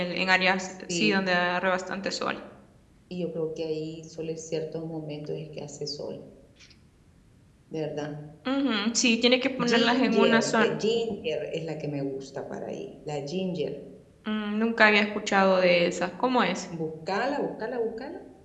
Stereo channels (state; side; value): identical; both; correlation 1.00